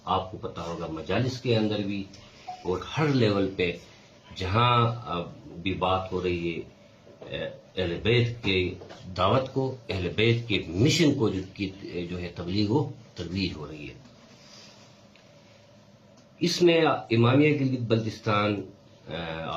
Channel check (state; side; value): identical; both; correlation 1.00